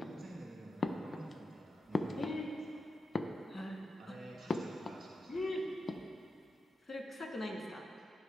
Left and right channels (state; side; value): normal; both; correlation 0.88